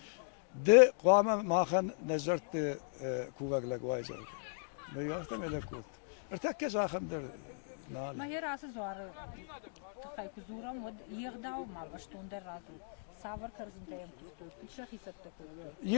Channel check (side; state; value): right; silent; digital silence